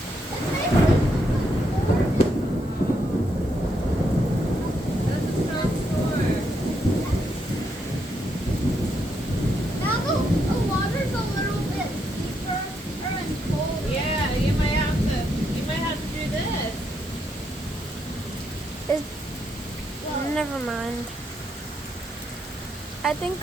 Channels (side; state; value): both; normal; correlation 0.78